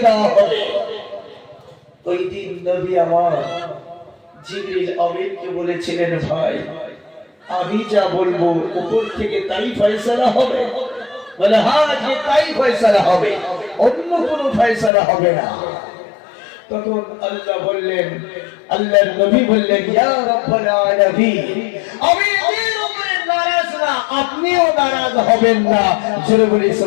দেওয়া হবে ওই দিন নবী আমার জিবরিল আমিনকে বলেছিলেন ভাই আমি যা বলবো উপর থেকে তাই ফয়সালা হবে বলে হ্যাঁ যে তাই ফয়সালা হবে অন্য কোনো ফয়সালা হবে না তখন আল্লাহ বললেন আল্লাহর নবী বললেন ইয়া রাব্বাল আলামিন আমি এর উপরে নারাজ না আপনিও নারাজ হবেন না জোরে বলি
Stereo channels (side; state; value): right; drops out; at 14.9 s